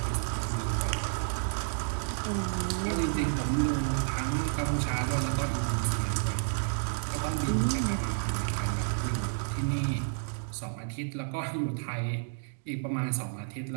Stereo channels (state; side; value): silent; left; digital silence